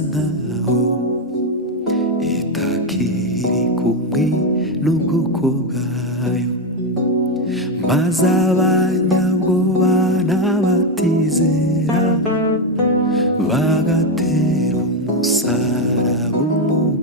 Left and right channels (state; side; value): normal; both; correlation 0.08